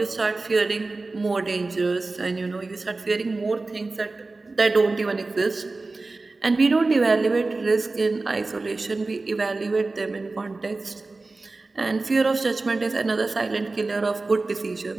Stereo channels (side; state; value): left; quieter; 3.5 dB